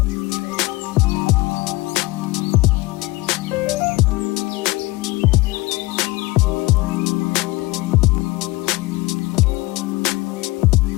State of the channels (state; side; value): quieter; right; 21.2 dB